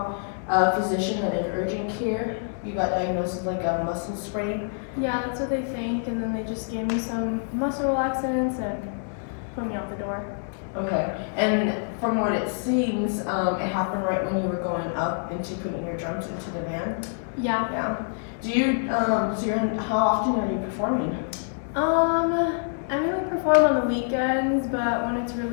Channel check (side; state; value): right; silent; digital silence